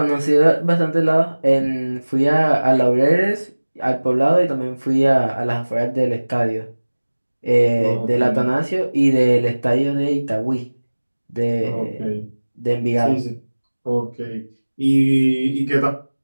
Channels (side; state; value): both; inverted; correlation -1.00